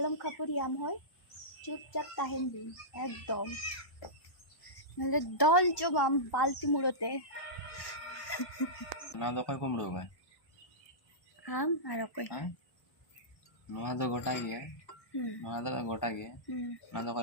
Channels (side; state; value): right; late; 1.1 ms